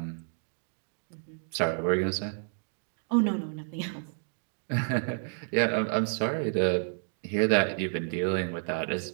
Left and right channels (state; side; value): silent; left; digital silence